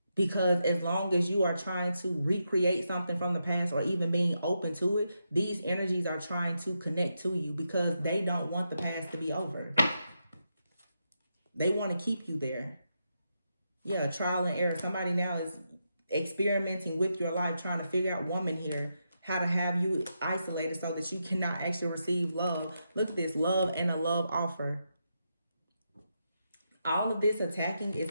Because as long as you are trying to recreate something from the past, or even being open to it, these energies are trying to connect to you because they don't want the past to be over. They want to keep you there. Yeah, trial and error. Somebody now is experimenting with your life, trying to figure out, woman here, how to have you isolated so that you cannot actually receive love. Look at this, love and a love offer. All of this attacking is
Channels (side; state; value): both; inverted; correlation -0.84